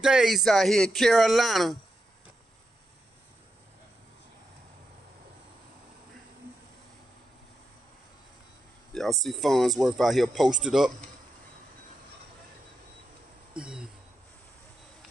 out here in Carolina. Y'all see Farnsworth out here posted up.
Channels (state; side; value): normal; both; correlation 0.86